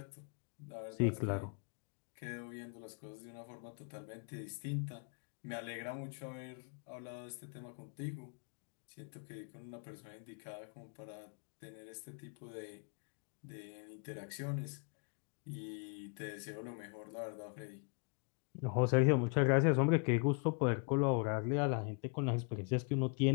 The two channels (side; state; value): right; quieter; 38.7 dB